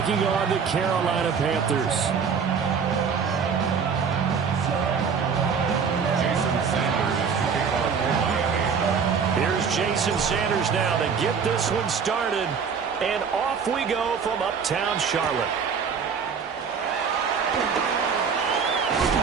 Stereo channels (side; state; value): left; quieter; 6.2 dB